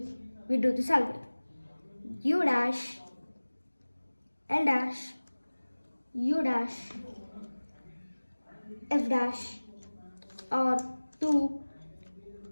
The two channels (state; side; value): inverted; both; correlation -1.00